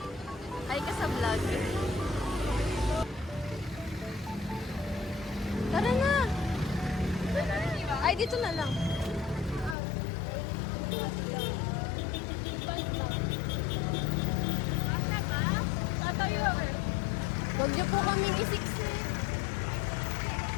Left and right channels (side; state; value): right; drops out; at 9.8 s